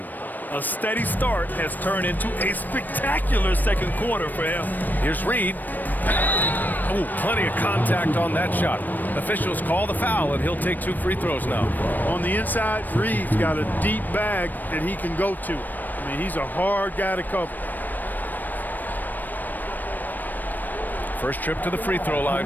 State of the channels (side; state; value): right; late; 0.088 ms